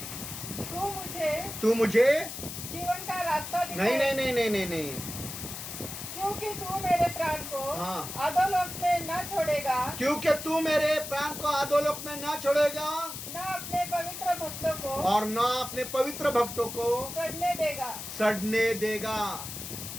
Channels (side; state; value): left; noise; hiss, 8 dB below the sound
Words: तू मुझे जीवन का रास्ता नहीं नहीं नहीं नहीं नहीं नहीं, क्योंकि तू मेरे प्राण को हाँ। अधोलोक में न छोड़ेगा, क्योंकि तू मेरे प्राण को अधोलोक में ना छोड़ेगा, न अपने पवित्र भक्तों को और न अपने पवित्र भक्तों को सड़ने देगा।